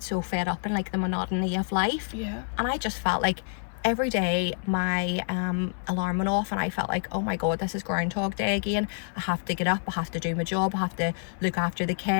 so fed up in like the monotony of life? And I just felt like every day my alarm went off and I felt like, oh my God, this is Groundhog Day again. I have to get up, I have to do my job, I have to look after the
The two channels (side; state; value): right; silent; digital silence